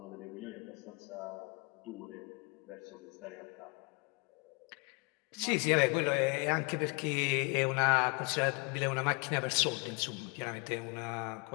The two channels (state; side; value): quieter; right; 31.2 dB